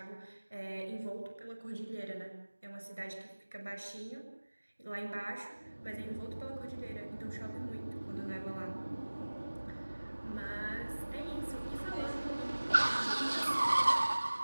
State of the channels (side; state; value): both; inverted; correlation -1.00